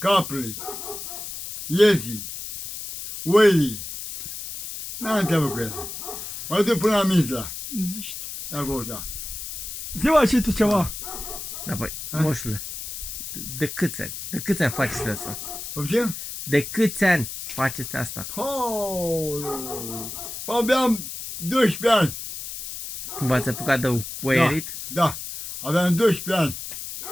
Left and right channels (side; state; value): left; noise; hiss, 8 dB below the sound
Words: iezii, oilii. N-am treabă cu ele. Mă duc până la Mizla. Zici tu. De acolo, da. Zi-mă și tu ceva. Da, băi, Ha? moșule, de câți ani? De câți ani faceți asta? Poftim? De câți ani faceți asta? Abia am 12 ani. Cum v-ați apucat de oierit? Da, aveam 12 ani.